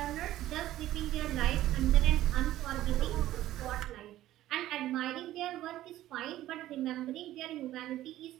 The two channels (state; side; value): quieter; left; 14.3 dB